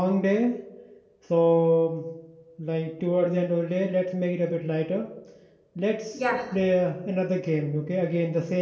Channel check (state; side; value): identical; both; correlation 1.00